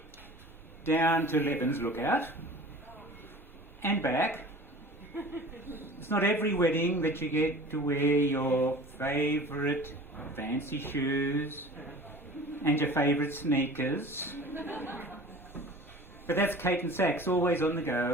down to Leban's Lookout and back. It's not every wedding that you get to wear your favourite fancy shoes and your favourite sneakers. But that's Kate and Sax, always on the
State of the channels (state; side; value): normal; both; correlation 0.41